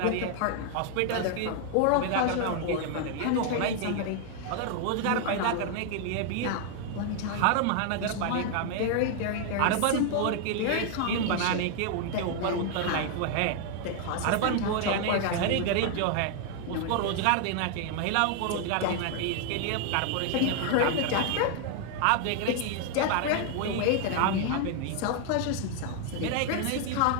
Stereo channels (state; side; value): different; both; correlation 0.00